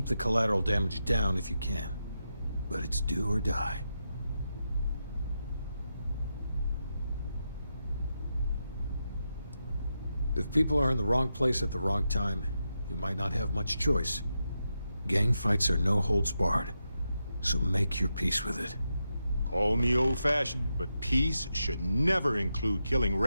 the collateral damage down if you can. But it's do or die. If people are in the wrong place at the wrong time, you might not have much choice. Gang fights are no holds barred, so make your peace with it. Call me old-fashioned, but peace should never include killing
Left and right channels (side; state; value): both; inverted; correlation -0.87